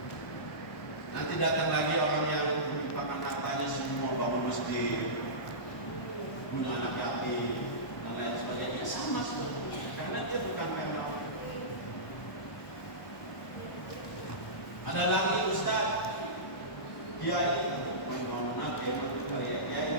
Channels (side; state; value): right; late; 1.1 ms